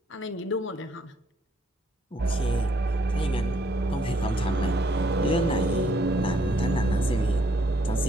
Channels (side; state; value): both; normal; correlation 0.69